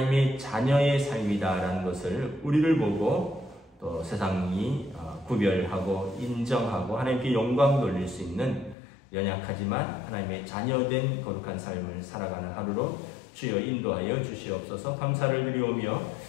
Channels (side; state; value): right; drops out; at 8.8 s